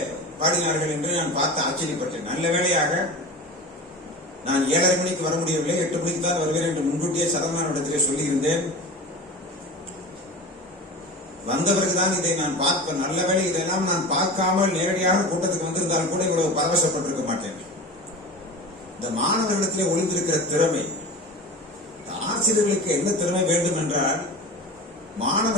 பாடினார்கள் என்று நான் பார்த்து ஆச்சரியப்பட்டேன். நல்ல வேளையாக நான் 7:30 மணிக்கு வர முடியவில்லை, 8 மணிக்கு தான் வருவேன் என்று முன்கூட்டியே சரவணனிடத்திலே சொல்லியிருந்தேன். வந்த பிறகுதான் இதை நான் பார்ப்பேன். நல்ல வேளை இதெல்லாம் நான் பார்க்காமல் நேரடியாக கூட்டத்துக்கு வந்திருந்தாலும் கூட இவ்வளவு பரவசப்பட்டிருக்க மாட்டேன். இந்த மாணவர்களிடத்திலே ஒளிந்திருக்கிற திறமை, ஆசிரியர்களுக்கு என்ன திறமை வேண்டும் என்றால்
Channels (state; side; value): normal; both; correlation 0.33